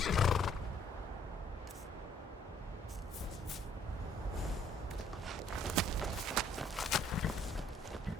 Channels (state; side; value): normal; both; correlation 0.63